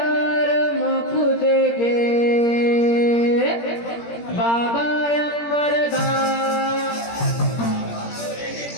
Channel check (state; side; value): late; right; 17 ms